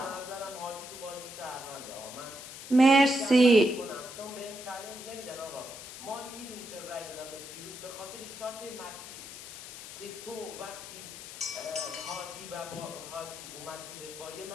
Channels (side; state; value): left; noise; hiss, 12 dB below the sound